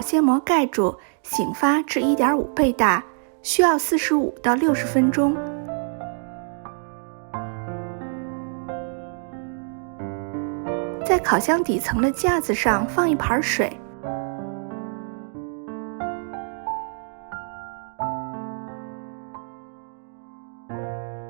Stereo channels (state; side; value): silent; left; 60 dB below the other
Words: 膜盖住，醒发至1.5倍大，需要45到60分钟。在烤箱底层的架子上放一盘水，